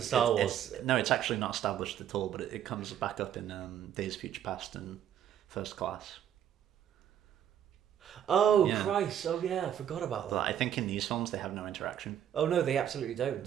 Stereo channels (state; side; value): quieter; left; 10.1 dB